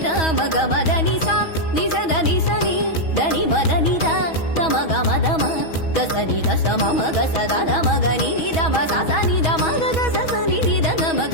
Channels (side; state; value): right; late; 6.2 ms